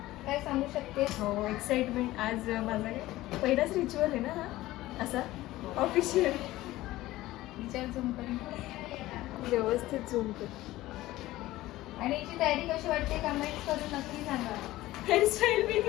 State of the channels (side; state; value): right; quieter; 16.8 dB